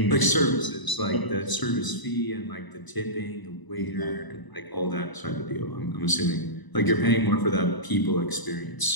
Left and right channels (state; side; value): late; right; 1.0 ms